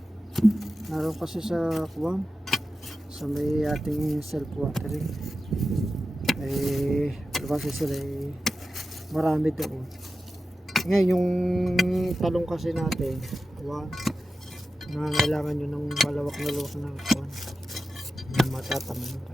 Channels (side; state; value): both; normal; correlation 0.92